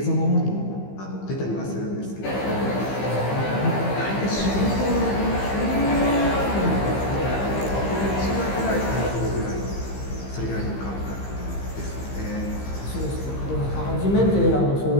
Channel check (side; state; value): right; late; 15 ms